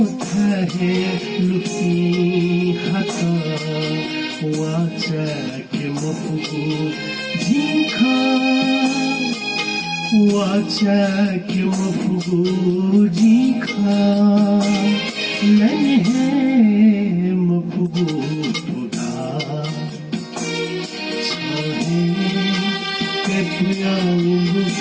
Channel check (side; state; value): both; identical; correlation 1.00